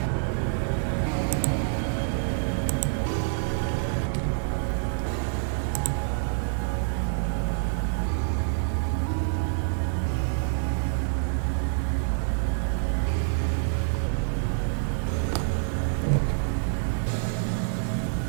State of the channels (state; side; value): silent; left; digital silence